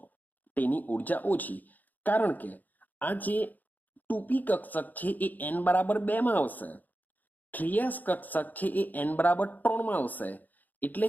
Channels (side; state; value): right; late; 0.083 ms